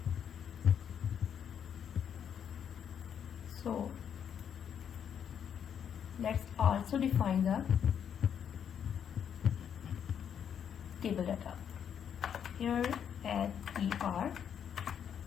So let's also define the table data. Here add er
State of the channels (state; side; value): quieter; right; 8.3 dB